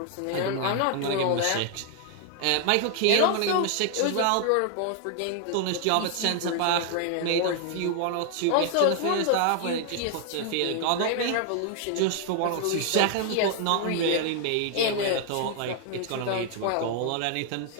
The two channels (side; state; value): both; different; correlation 0.00